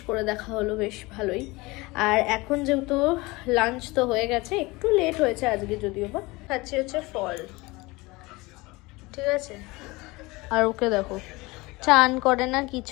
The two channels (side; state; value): right; quieter; 22.9 dB